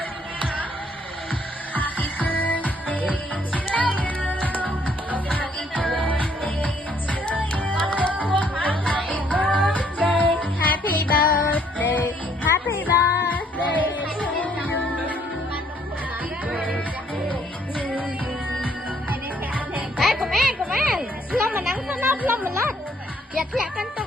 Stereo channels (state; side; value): normal; both; correlation 0.66